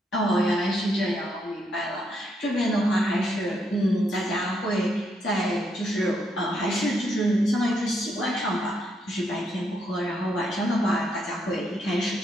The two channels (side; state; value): both; normal; correlation 0.77